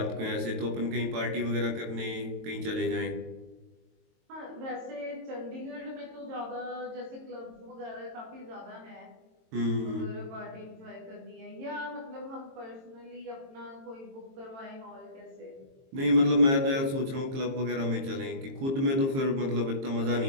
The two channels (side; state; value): left; late; 22 ms